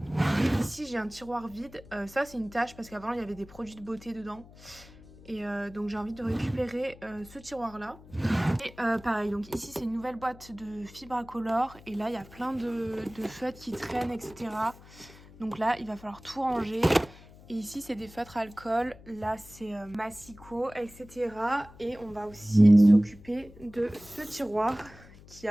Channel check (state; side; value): noise; left; hum, 21 dB below the sound